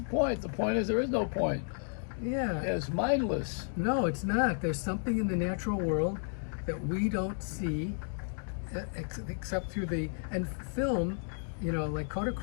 point. The point is there is no point. Yeah. It's mindless. No, it's not. There's something in the natural world that we don't see except through and film, like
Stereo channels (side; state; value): right; silent; 56 dB below the other